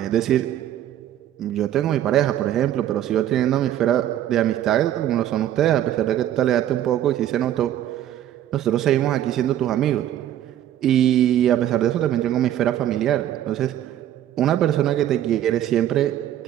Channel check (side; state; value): left; quieter; 11.8 dB